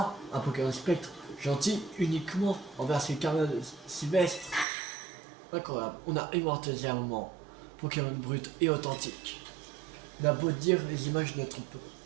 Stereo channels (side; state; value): left; drops out; at 4.7 s